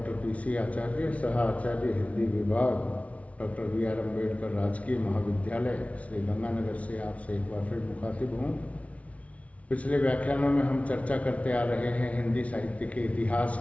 PC आचार्य, सह आचार्य हिंदी विभाग, डॉक्टर बी.आर. अम्बेडकर राजकीय महाविद्यालय, श्री गंगानगर से आपसे एक बार फिर मुखातिब हूँ। पिछले व्याख्यानों में हम चर्चा करते आ रहे हैं हिंदी साहित्य के इतिहास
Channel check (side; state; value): right; late; 0.065 ms